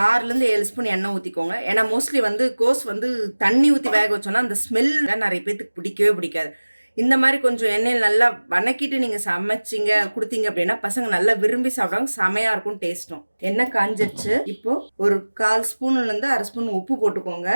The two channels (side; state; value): both; inverted; correlation -1.00